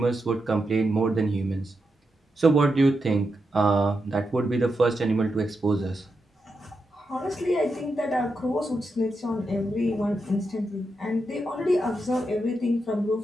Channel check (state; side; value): normal; both; correlation 0.86